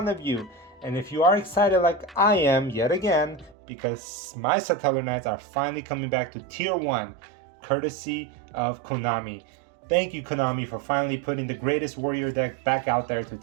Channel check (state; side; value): drops out; left; at 3.6 s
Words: of you. And if you are excited like I am yet again, because my Satellarknights are finally coming back to tier 1 courtesy of Konami. Thank you, Konami, for finally putting the greatest warrior deck back out there to